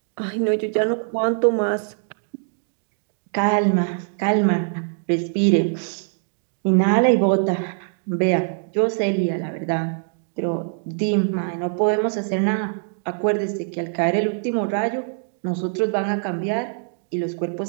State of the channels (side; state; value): left; silent; digital silence